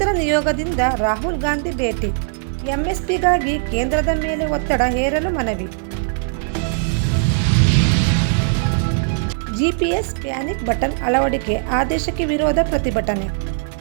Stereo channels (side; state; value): left; silent; 62 dB below the other